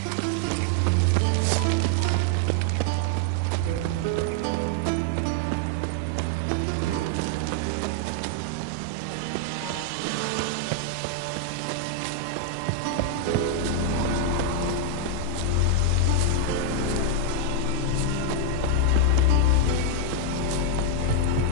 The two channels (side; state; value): both; different; correlation 0.00